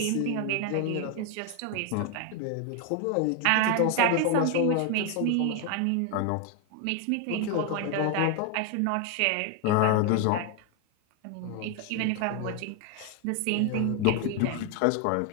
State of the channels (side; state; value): both; different; correlation 0.01